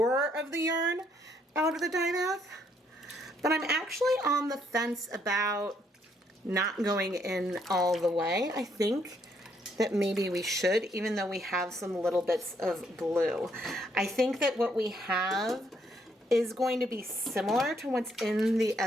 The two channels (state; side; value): normal; both; correlation 0.71